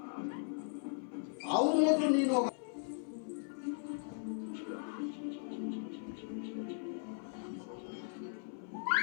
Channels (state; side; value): silent; right; 52 dB below the other